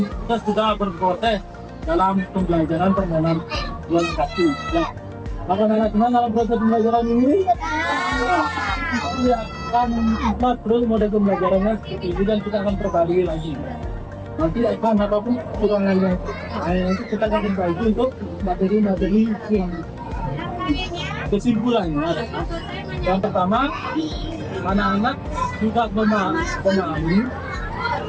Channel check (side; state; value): both; identical; correlation 1.00